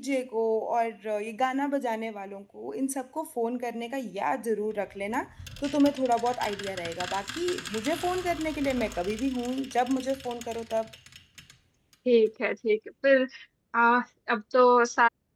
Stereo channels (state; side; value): identical; both; correlation 1.00